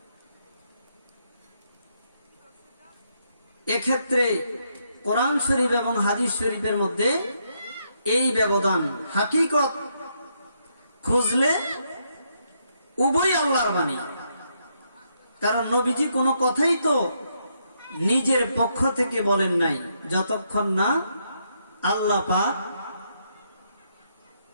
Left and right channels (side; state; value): both; inverted; correlation -0.77